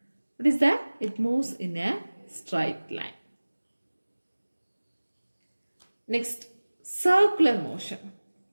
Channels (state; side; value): inverted; both; correlation -1.00